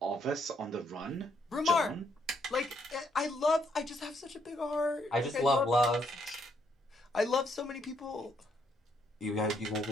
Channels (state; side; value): normal; both; correlation 0.72